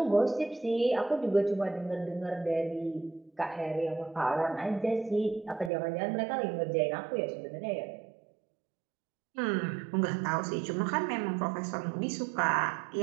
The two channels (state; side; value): drops out; left; at 5.7 s